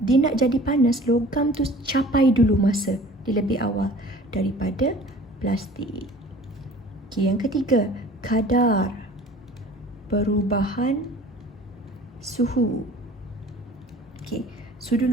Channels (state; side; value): normal; both; correlation 0.46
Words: nak jadi panas, logam tu capai dulu masa di lebih awal daripada plastik. Okey, yang ketiga, kadar perubahan suhu. Okey, sudu